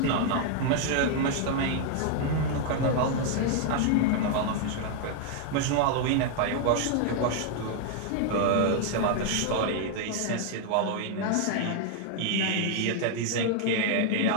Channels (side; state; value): both; different; correlation 0.00